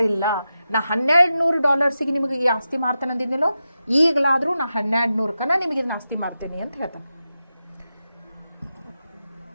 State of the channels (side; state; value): both; inverted; correlation -0.90